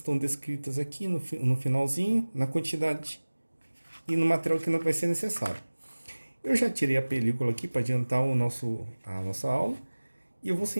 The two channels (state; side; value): inverted; both; correlation -1.00